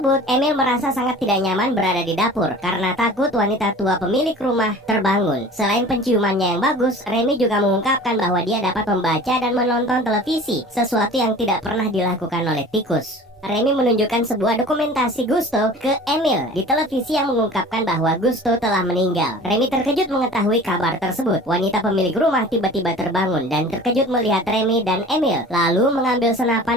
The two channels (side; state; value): both; normal; correlation 0.42